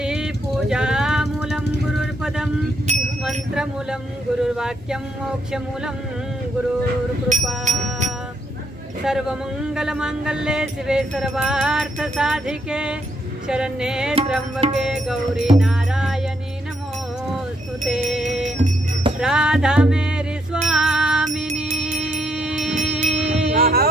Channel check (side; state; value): both; normal; correlation 0.75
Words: पूजामूलं गुरुर्पदं मंत्रमूलं गुरुर्वाक्यं मोक्षमूलं गुरुर्कृपा सर्वमंगलमांगल्ये शिवे सर्वार्थसाधिके शरण्ये त्र्यंबके गौरी नारायणी नमोस्तुते राधा मेरी स्वामिनी